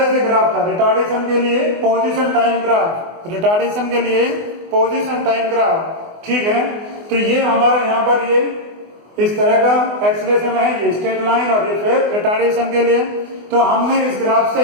से ग्राफ था, रिटार्डेशन के लिए पोजीशन टाइम ग्राफ, रिटार्डेशन के लिए पोजीशन टाइम ग्राफ। ठीक है, तो ये हमारा यहाँ पर ये इस तरह का एक्सेलरेशन है, ये स्ट्रेट लाइन, और ये फिर रिटार्डेशन के लिए। तो हमने इस ग्राफ से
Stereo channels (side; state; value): left; late; 24 ms